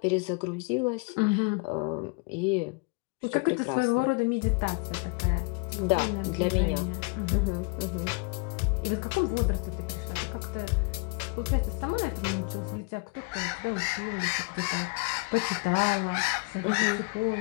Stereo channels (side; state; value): right; quieter; 30.2 dB